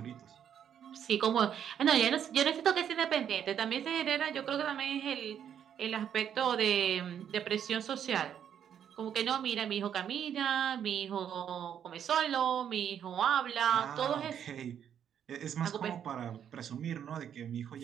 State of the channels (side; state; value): left; quieter; 9.0 dB